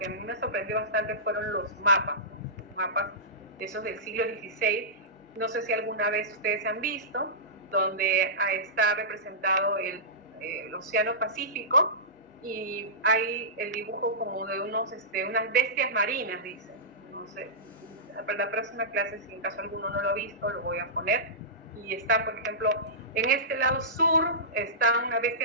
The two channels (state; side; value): normal; both; correlation -0.18